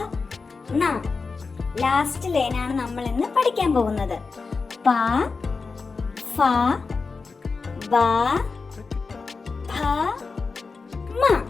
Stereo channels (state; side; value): quieter; right; 4.5 dB